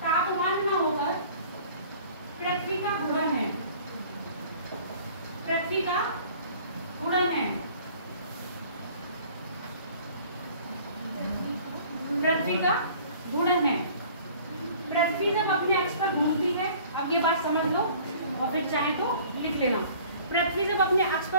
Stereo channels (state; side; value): inverted; both; correlation -0.50